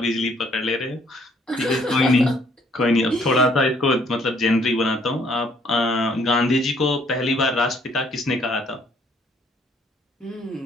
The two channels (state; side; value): normal; both; correlation 0.64